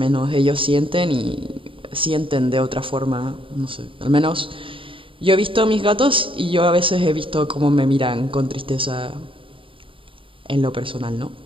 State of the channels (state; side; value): late; left; 0.25 ms